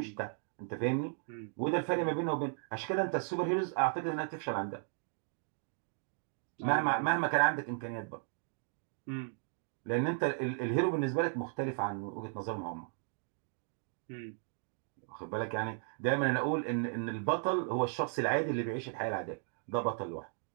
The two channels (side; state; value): left; silent; 54 dB below the other